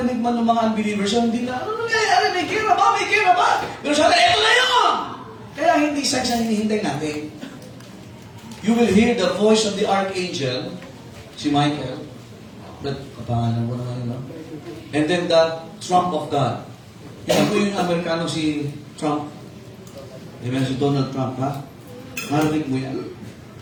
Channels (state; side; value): identical; both; correlation 1.00